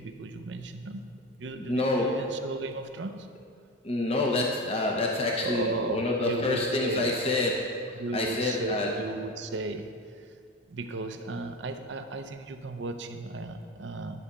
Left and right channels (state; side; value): normal; both; correlation 0.25